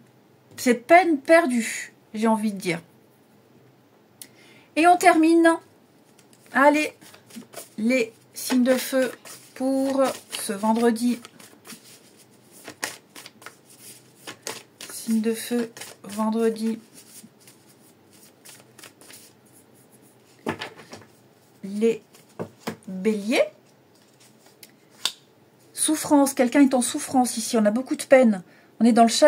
C'est peine perdue, j'ai envie de dire. Et on termine. Allez, les signes de feu pour ce vendredi. Signes de feu, vendredi. Les béliers. Souffrance, quelqu'un est en souffrance ici, on a beaucoup de peine, on est dans le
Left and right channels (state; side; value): identical; both; correlation 1.00